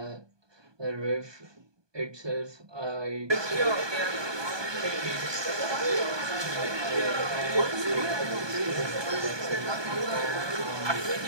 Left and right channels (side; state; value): left; late; 1.2 ms